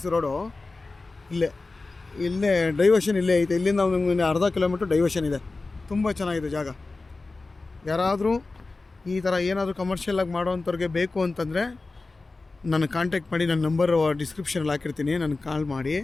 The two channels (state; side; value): quieter; right; 3.5 dB